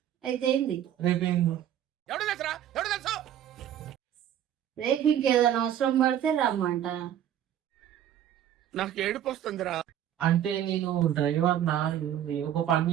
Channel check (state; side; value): quieter; left; 10.7 dB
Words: అయితే ఏంది రేపేంది? రేపు ఇంకేదైనా అవసరం పడితే రమ్మంట. నాకు ఏడుపు వస్తుందిరా. అంటే నేను డ్రైవర్ నా ఒక పని